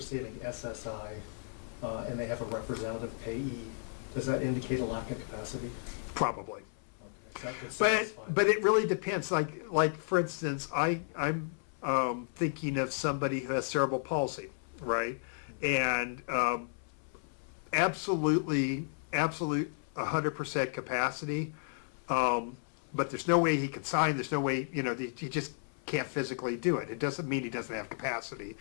SSI and they have a representative payee, does that indicate a lack of capacity? Probably. Okay. So But it really depends. Like for instance, I'm thinking of somebody who has cerebral palsy, right? And absolute 100% capacity, but there's no way he can sign. There's no way, you know, he just can't physically do it. It doesn't mean he doesn't have capacity,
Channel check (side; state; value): right; silent; 55 dB below the other